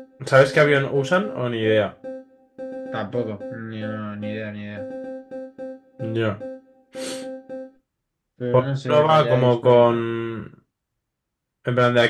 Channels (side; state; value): both; identical; correlation 1.00